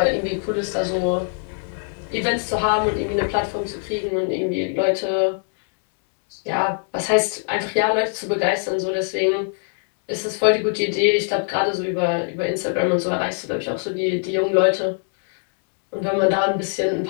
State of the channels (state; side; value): silent; right; 64 dB below the other